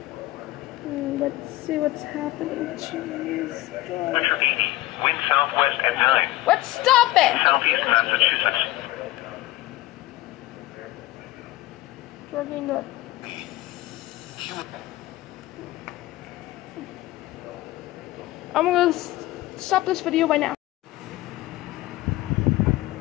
Let's see what's happening. Jeez. Wind southwest at 9. Let's stop it! Southeast Massachusetts. Working good. I'm gonna stop this video right now.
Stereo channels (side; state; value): right; quieter; 17.3 dB